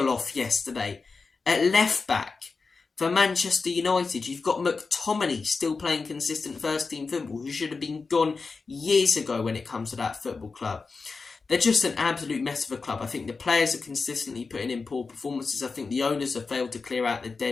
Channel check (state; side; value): quieter; right; 4.4 dB